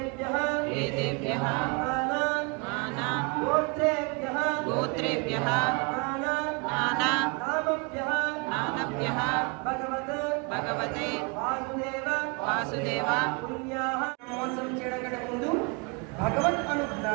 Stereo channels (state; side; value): quieter; left; 32.1 dB